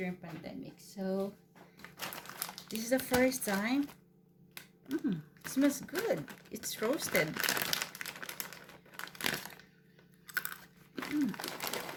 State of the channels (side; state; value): both; identical; correlation 1.00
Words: pandemic. So this is the first time. It smells good. It's roasted.